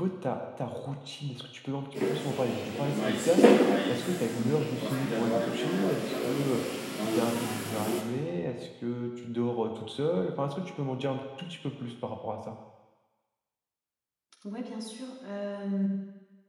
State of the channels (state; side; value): identical; both; correlation 1.00